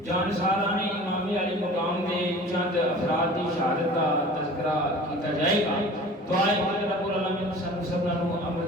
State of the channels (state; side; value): normal; both; correlation 0.42